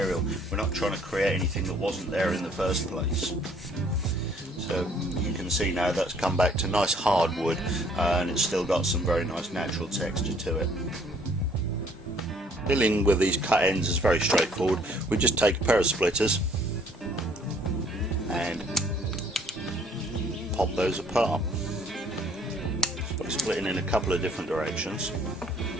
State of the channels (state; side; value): normal; both; correlation 0.60